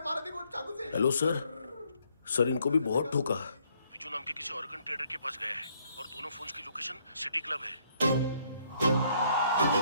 मारा, देखो चाकू से। हेलो सर, सर इनको भी बहुत ठोका। विजू नाम के किसी ऑर्गन ट्रेडर के पास गया है और दोनों फोन्स की लोकेशन सिटी क्लब है।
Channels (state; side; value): inverted; both; correlation -0.68